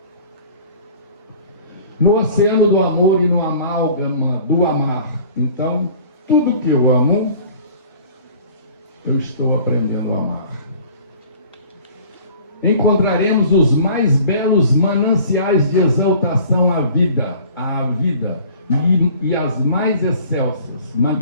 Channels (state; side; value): inverted; both; correlation -0.48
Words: No oceano do amor e no amálgama do amar, então, tudo que eu amo, eu estou aprendendo a amar. Encontraremos os mais belos mananciais de exaltação à vida e as mais excelsas,